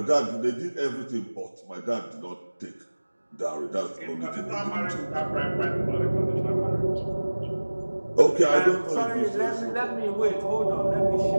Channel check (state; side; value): inverted; both; correlation -1.00